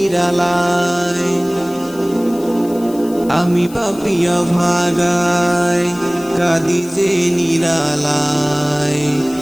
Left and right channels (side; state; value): left; noise; hiss, 20 dB below the sound